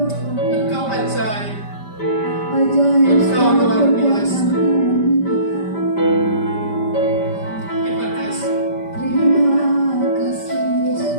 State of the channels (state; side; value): late; right; 5.1 ms